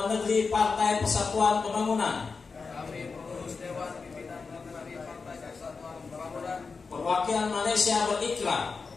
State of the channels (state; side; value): quieter; right; 4.7 dB